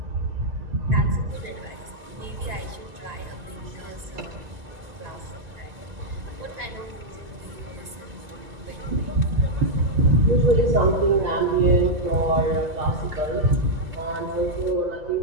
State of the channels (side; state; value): left; late; 1.9 ms